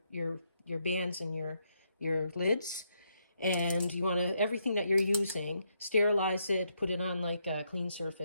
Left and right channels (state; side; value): inverted; both; correlation -0.77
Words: bands and your lids. And you want to, everything that you're using, sterilize it, put it on like a clean